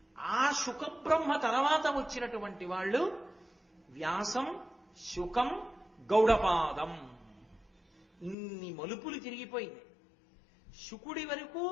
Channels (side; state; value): right; drops out; at 8.3 s